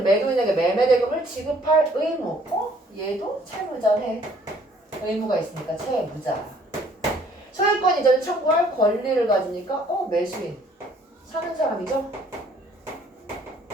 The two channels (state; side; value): normal; both; correlation 0.60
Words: 매도인에게 매매대금을 지급할 의무. 얘도 채무자네. 의무가 있으니까 채무자. 소유권 이전을 청구할 권리를 가지니까 매수인. 사는 사람이죠?